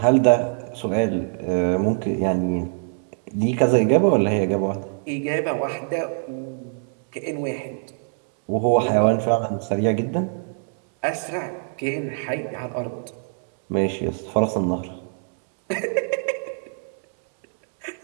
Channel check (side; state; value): left; silent; digital silence